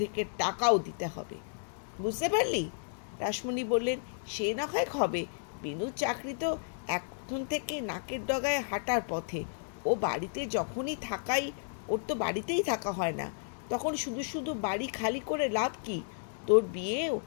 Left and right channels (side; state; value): right; silent; digital silence